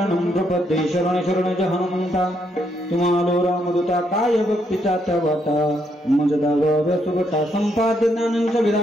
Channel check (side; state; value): both; normal; correlation 0.75